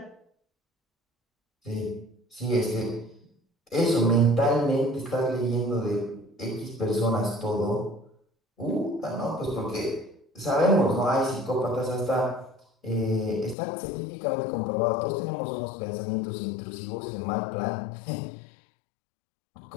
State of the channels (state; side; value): drops out; right; at 13.6 s